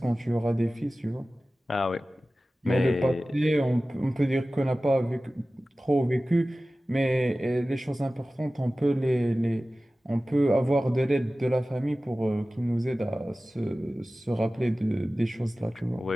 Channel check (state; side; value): normal; both; correlation 0.96